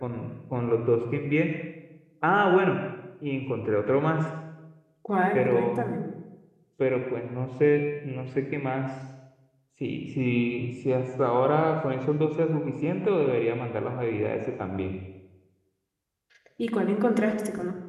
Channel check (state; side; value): identical; both; correlation 1.00